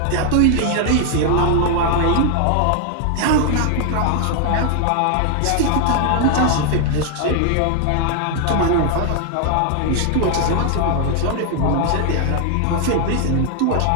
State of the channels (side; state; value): both; different; correlation 0.00